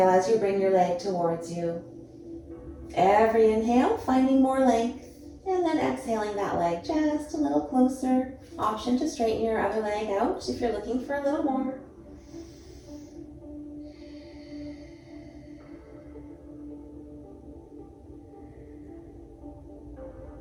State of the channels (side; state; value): both; identical; correlation 1.00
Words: as you bring your leg towards you. Every inhale, finding more length. And then exhaling that leg just a little closer. Option to straighten your other leg out if you're looking for a little more.